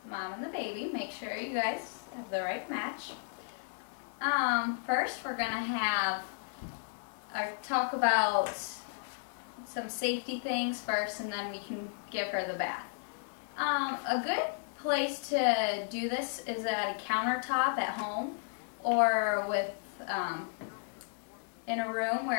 Mom and the baby, make sure you guys have the right match. First we're gonna talk about some safety things first, and then we can give her the bath. A good place to do this is at a countertop at home, or in a room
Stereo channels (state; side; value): silent; right; digital silence